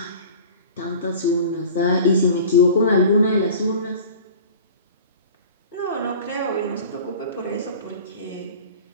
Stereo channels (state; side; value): inverted; both; correlation -0.40